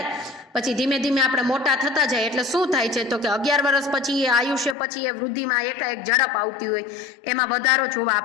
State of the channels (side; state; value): right; drops out; at 4.8 s